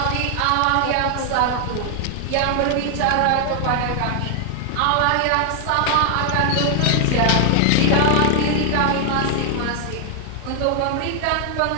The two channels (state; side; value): different; both; correlation 0.00